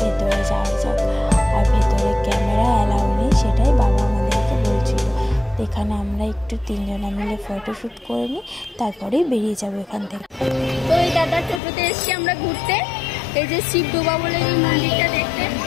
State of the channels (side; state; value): right; drops out; at 11.6 s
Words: ভেতরে যাওয়া যাক। আর ভেতরে ক্যামেরা অ্যালাউ নেই, সেটাই বাবা আমাদেরকে বলছিল। এখানে আমরা একটু 3 জনা মিলে ফটোশ্যুট করে নিই, তারপরেই বেরিয়ে যাবো এখান থেকে। তো এই দাদার টোটোতে এসছি আমরা ঘুরতে, এই যে শিবডোবা বলে এই মন্দিরটা দেখতে।